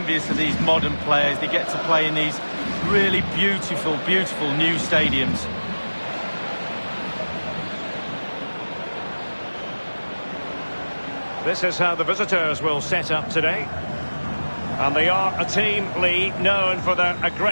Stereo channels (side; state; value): both; inverted; correlation -1.00